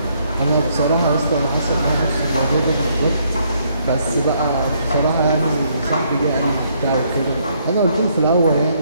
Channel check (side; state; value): both; inverted; correlation -0.70